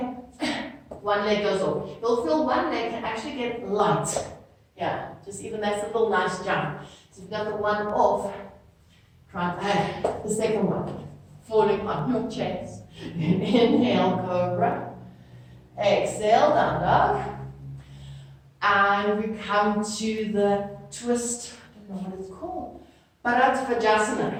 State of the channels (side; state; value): both; identical; correlation 1.00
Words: one leg goes off. You'll feel one leg can actually get light. Yeah, just even that's a little nice jump. So you've got the one off, try the second one, falling on your chest. Inhale, cobra. Exhale, down dog. And we come to the twist, I don't know what it's called, Bharadvajasana.